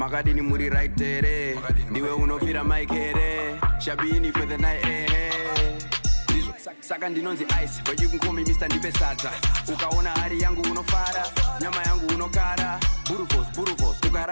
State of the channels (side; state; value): both; inverted; correlation -1.00